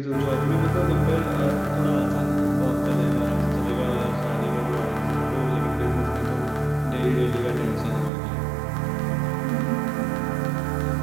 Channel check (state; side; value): drops out; left; at 8.1 s